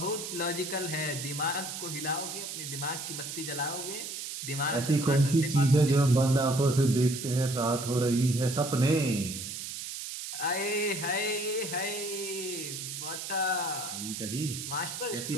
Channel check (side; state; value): right; noise; hiss, 7 dB below the sound